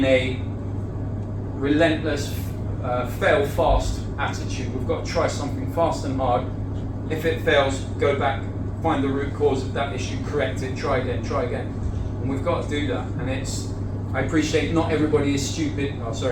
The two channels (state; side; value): identical; both; correlation 1.00